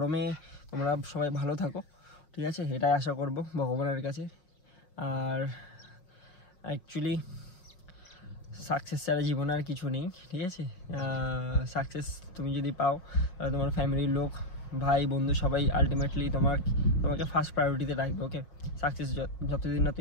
তোমরা সবাই ভালো থাকো। ঠিক আছে, এটাই আশা করব ভগবানের কাছে। আর অ্যাকচুয়ালি সাকসেস ছাড়া জীবনে আর কিছু নেই। ঠিক আছে, সাকসেস তুমি যদি পাও, তাহলে তোমার ফ্যামিলির লোক, ভাই বন্ধু সবাই আলটিমেটলি তোমাকে ফার্স্ট প্রায়োরিটিতে রাখবে। ওকে, সাকসেস যতদিন না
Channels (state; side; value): late; right; 5.6 ms